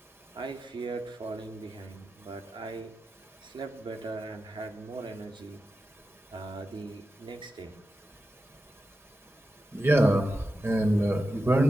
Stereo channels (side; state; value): both; normal; correlation 0.91